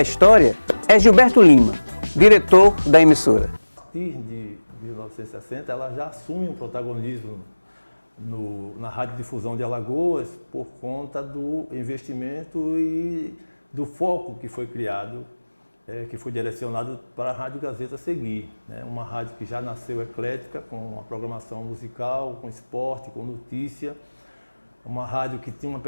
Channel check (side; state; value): both; inverted; correlation -1.00